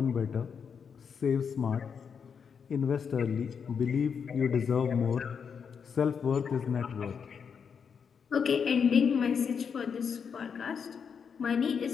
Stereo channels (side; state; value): right; quieter; 6.6 dB